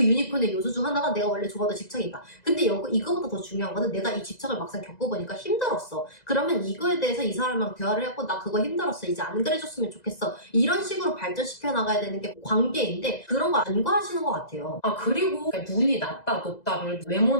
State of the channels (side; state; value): right; late; 2.0 ms